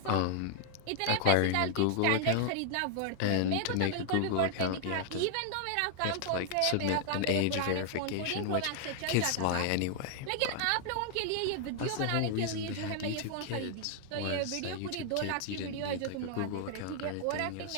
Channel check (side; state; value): both; different; correlation -0.01